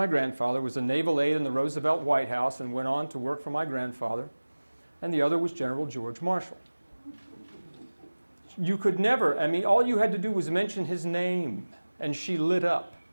grandfather, was a naval aide in the Roosevelt White House and went on to work for my grandfather. And the other was General George Marshall. You could never, all you had to do was mention his name, and she lit up.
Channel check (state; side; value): inverted; both; correlation -1.00